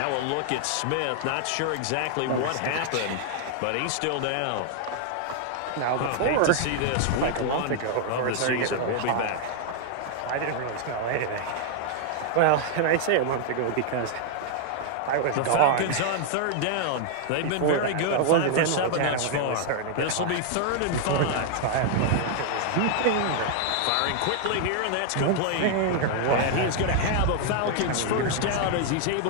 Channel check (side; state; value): both; different; correlation 0.00